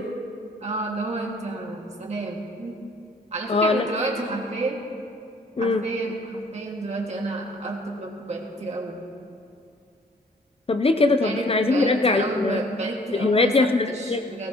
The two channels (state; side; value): normal; both; correlation 0.57